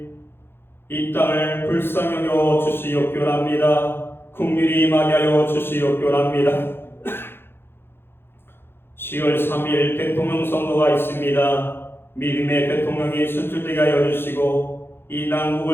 이 땅을 불쌍히 여겨 주시옵기원합니다. 긍휼히 임하게 하여 주시옵기원합니다. 10월 3일 대통령 선거가 있습니다. 믿음의 대통령이 선출되게 하여 주시고 이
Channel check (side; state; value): right; late; 0.11 ms